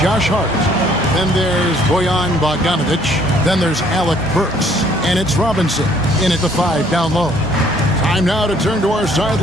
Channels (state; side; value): normal; both; correlation 0.61